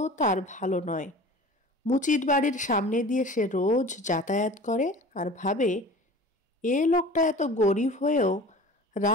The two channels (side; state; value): both; normal; correlation 0.40